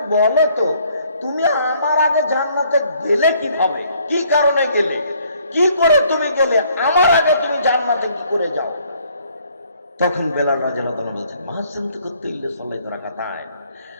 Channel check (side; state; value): both; inverted; correlation -0.64